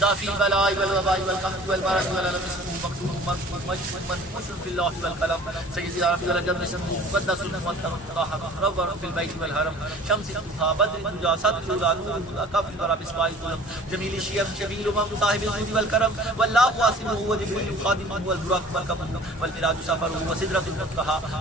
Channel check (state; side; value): normal; both; correlation 0.47